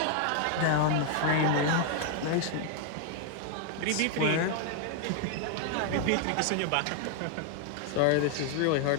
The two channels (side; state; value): both; different; correlation 0.00